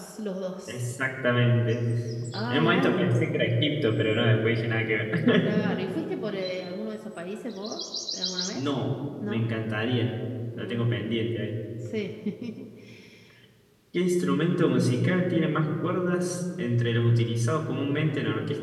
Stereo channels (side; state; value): both; identical; correlation 1.00